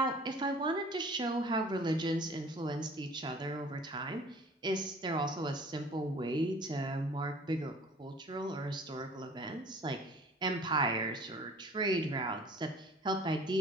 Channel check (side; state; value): both; normal; correlation 0.49